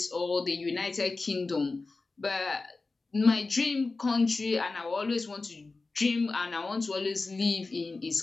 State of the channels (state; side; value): quieter; right; 3.7 dB